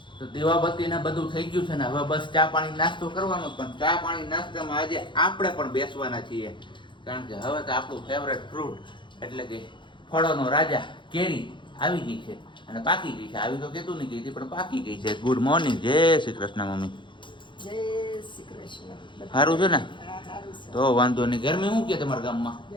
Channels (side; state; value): right; late; 0.23 ms